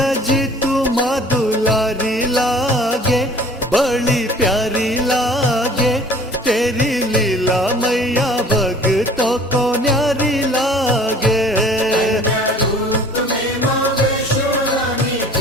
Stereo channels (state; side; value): normal; both; correlation 0.49